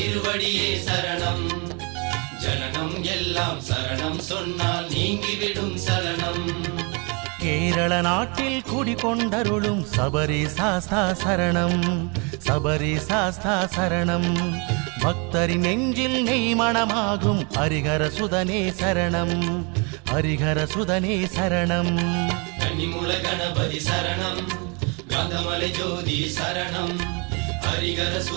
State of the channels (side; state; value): left; quieter; 32.6 dB